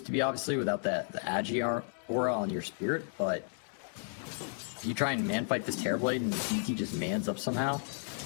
to be, obviously, without the Agi aura on your spirit, but you try and man fight this Terrorblade and DT just mans up somehow.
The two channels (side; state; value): right; silent; digital silence